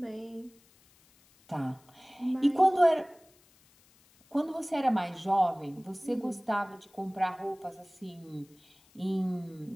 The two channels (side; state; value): left; noise; hiss, 30 dB below the sound